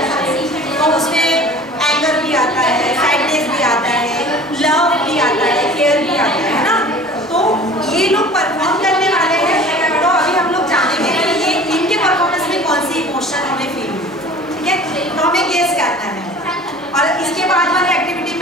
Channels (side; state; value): both; normal; correlation 0.44